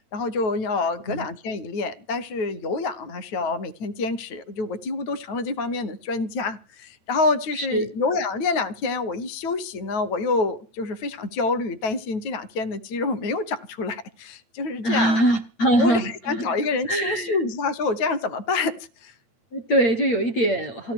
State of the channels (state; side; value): late; right; 9.2 ms